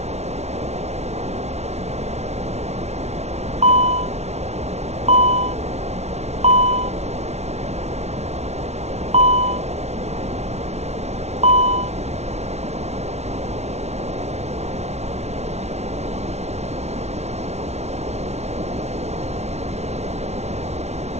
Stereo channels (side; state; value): left; late; 0.31 ms